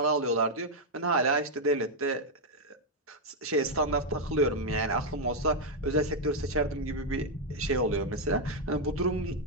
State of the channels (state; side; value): normal; both; correlation -0.01